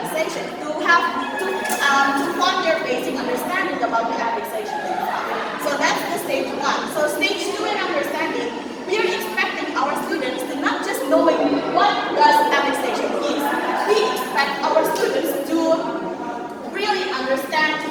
to form their basic understanding about the affixations. So that's the stage one. So stage two in understanding, we are expecting our students to not just knowing what does affixation is. We expect our students to really understand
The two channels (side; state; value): both; identical; correlation 1.00